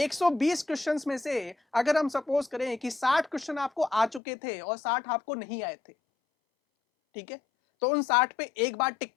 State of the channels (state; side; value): drops out; right; at 4.2 s